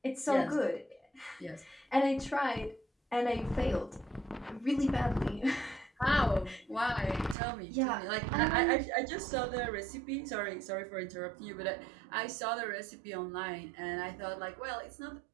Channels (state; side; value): drops out; left; at 7.4 s